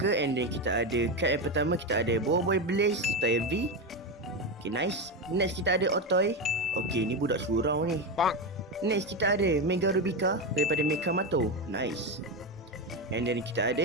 and then kita ada card yang pertama, kita ada Boy Blaze Style V. Okay, nice. Next kita ada Otoy. Okay, ni budak surau ni. Next kita ada Mega Rubica daripada Mekamato. Nice. And then kita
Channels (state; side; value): normal; both; correlation 0.14